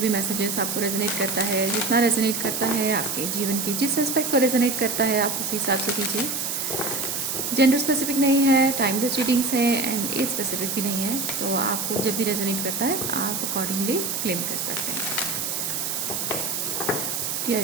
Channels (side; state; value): right; noise; hiss, 2 dB below the sound